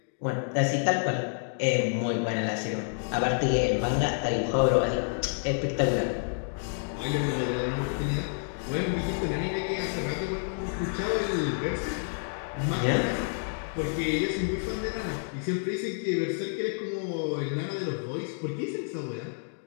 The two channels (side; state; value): right; silent; digital silence